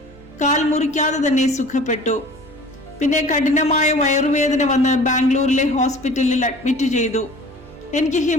കാൽ മുറിക്കാതെ തന്നെ സുഖപ്പെട്ടു. പിന്നെ കഠിനമായ വയറുവേദന വന്ന് ബാംഗ്ലൂരിലെ ഹോസ്പിറ്റലിൽ അഡ്മിറ്റ് ചെയ്തു. എനിക്ക്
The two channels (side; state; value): both; normal; correlation 0.45